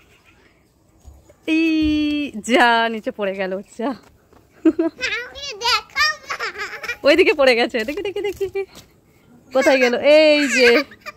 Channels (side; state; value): both; identical; correlation 1.00